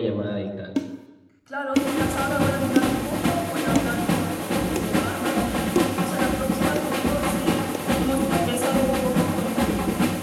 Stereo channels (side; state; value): both; identical; correlation 1.00